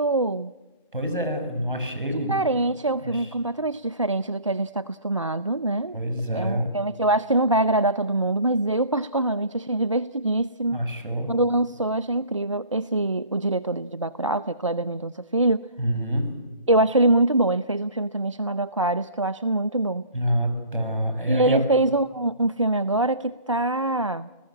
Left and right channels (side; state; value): both; inverted; correlation -0.47